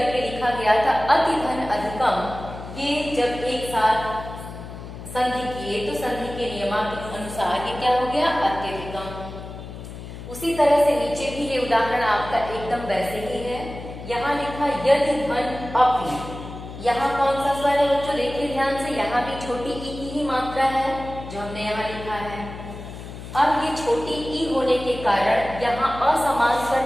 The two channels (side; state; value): left; noise; hum, 12 dB below the sound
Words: लिखा गया था अतिधन अधिकम। ये जब एक साथ संधि किए तो संधि के नियमानुसार ये क्या हो गया? अत्यधिकम। उसी तरह से नीचे भी ये उदाहरण आपका एकदम वैसे ही है। यहाँ लिखा यदि धन अपि। यहाँ कौन सा स्वर है बच्चों? देखिए ध्यान से, यहाँ भी छोटी ई की ही मात्रा है जो हमने यहाँ लिखा है। अब ये छोटी ई होने के कारण यहाँ असमान